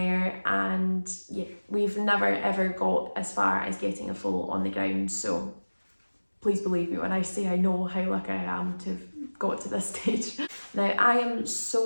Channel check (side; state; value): both; inverted; correlation -1.00